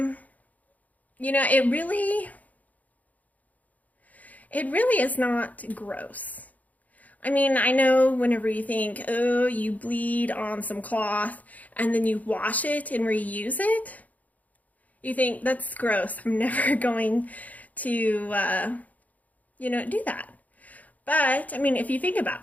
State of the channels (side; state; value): right; late; 0.076 ms